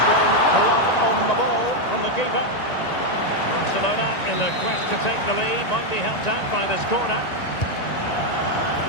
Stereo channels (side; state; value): right; late; 1.9 ms